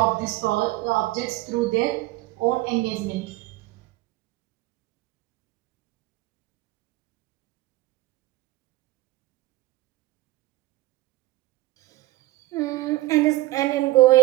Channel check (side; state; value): left; quieter; 18.6 dB